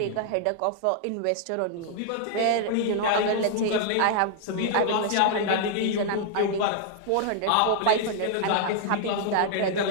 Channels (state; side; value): different; both; correlation 0.00